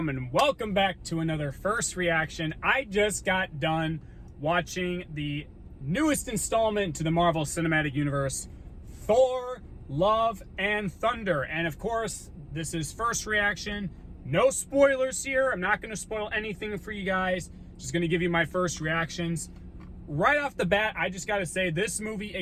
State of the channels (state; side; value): identical; both; correlation 1.00